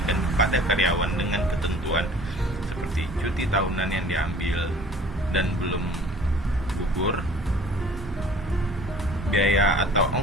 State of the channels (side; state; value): both; normal; correlation 0.49